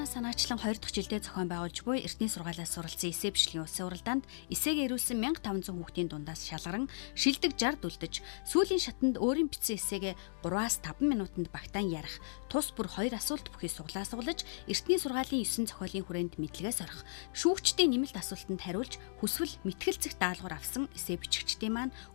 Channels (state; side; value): silent; right; digital silence